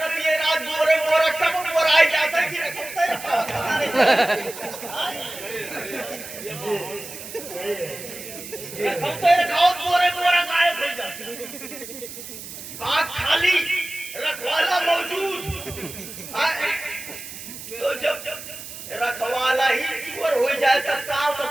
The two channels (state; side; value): noise; right; hiss, 12 dB below the sound